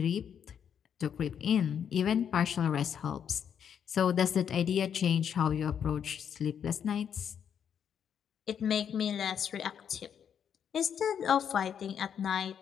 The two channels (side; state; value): right; quieter; 8.2 dB